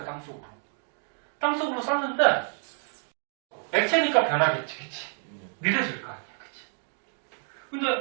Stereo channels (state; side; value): silent; left; 55 dB below the other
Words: 땅속으로. 땅속으로 쐈는데 액체니까 변하겠지, 그치? 느려질 거 아니야, 그치?